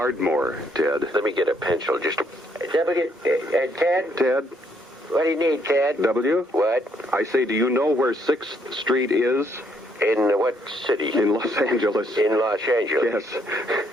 Ted. Let me get a pencil. Just Ted? Ted? What do you need, Ted? W? What? I say, do you know where 6th Street is? In what city? In Los Angeles. In Los Angeles? Yes.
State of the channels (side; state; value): both; normal; correlation 0.71